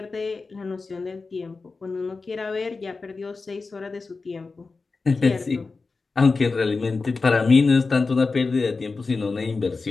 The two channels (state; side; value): quieter; right; 4.1 dB